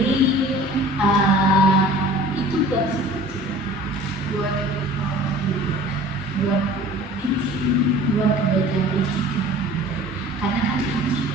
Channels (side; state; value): both; normal; correlation 0.45